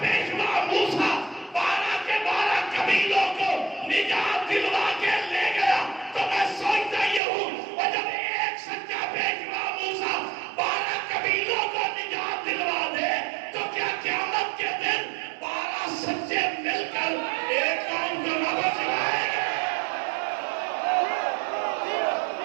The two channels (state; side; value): drops out; left; at 7.2 s